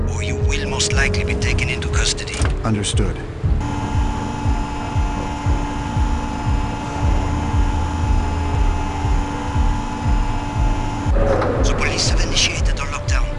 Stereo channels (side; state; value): both; identical; correlation 1.00